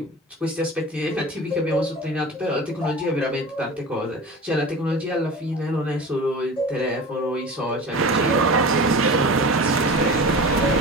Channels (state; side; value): normal; both; correlation 0.34